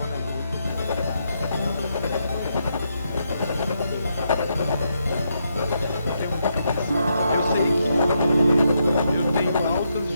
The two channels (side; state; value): both; inverted; correlation -0.80